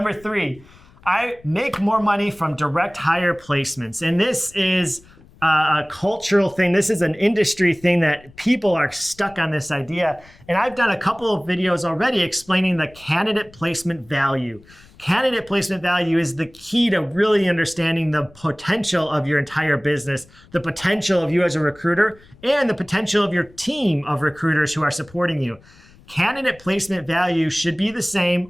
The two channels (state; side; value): noise; left; rumble, 26 dB below the sound